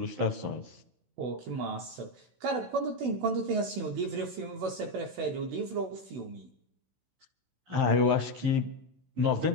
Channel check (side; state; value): left; late; 16 ms